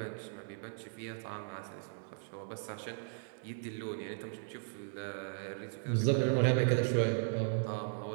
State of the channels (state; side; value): silent; left; digital silence